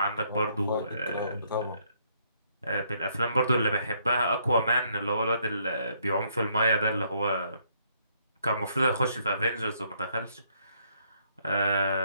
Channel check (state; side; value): inverted; both; correlation -0.70